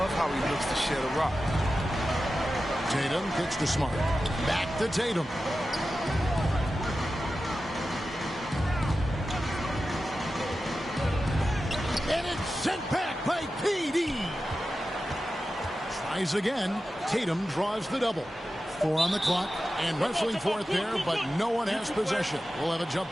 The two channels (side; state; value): both; normal; correlation 0.93